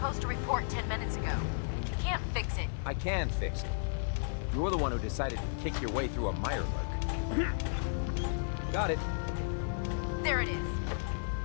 to report 10 minutes ago. You can't fix it. I can fix it. You're the one who decided to kick your way through a mirelurk. Got it. There it is.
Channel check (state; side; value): silent; right; digital silence